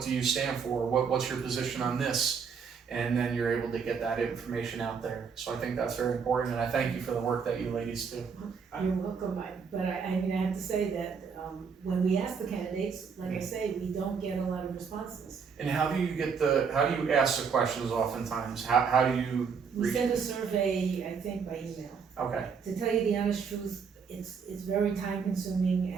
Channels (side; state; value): left; quieter; 6.1 dB